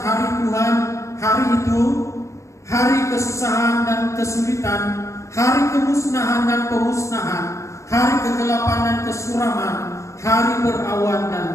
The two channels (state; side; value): late; right; 0.15 ms